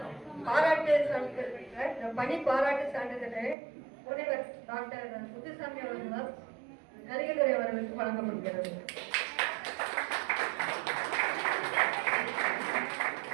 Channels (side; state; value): left; drops out; at 3.6 s